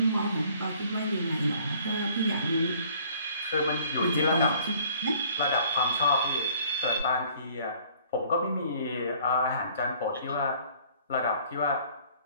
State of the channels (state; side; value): inverted; both; correlation -0.56